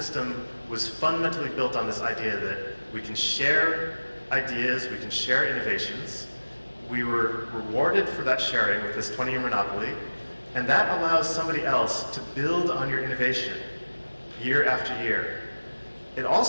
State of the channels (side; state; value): both; inverted; correlation -1.00